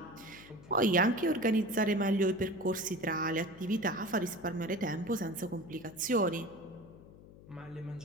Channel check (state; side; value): noise; left; hum, 20 dB below the sound